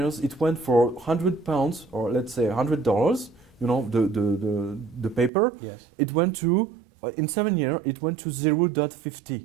it went for £100, or let's say $100. The paper. Yes. It went to in 7 years. It went to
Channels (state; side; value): drops out; left; at 5.3 s